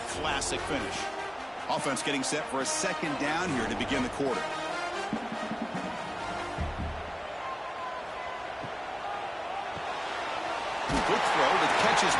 classic finish. Offense getting set for a second down here to begin the quarter. Quick throw, the catch is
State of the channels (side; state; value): both; identical; correlation 1.00